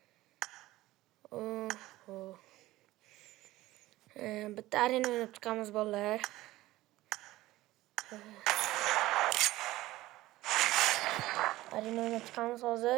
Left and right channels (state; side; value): quieter; left; 17.1 dB